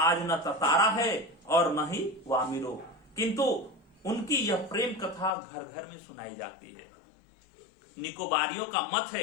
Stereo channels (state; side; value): drops out; right; at 5.3 s